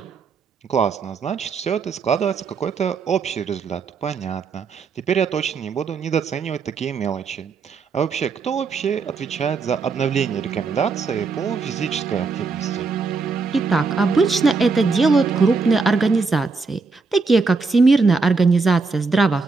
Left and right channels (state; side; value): quieter; left; 4.5 dB